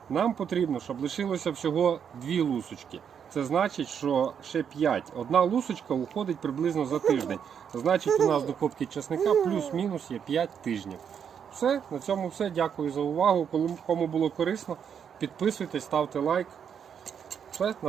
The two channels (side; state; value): left; quieter; 7.7 dB